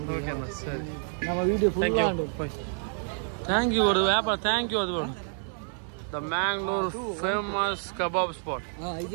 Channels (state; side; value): silent; left; digital silence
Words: ಓಕೆ ಅಣ್ಣ ಸರಿ ನಮ್ಮ ವಿಡಿಯೋ ಫುಲ್ ಆಂಡು ಥ್ಯಾಂಕ್ ಯು ಅದು ವ್ಯಾಪಾರ ಥ್ಯಾಂಕ್ ಯು ಅದು the Mangalore famous kebab spot